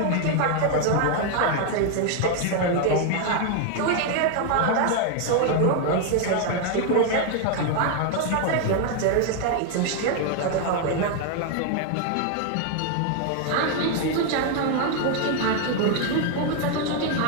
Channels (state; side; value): different; both; correlation 0.00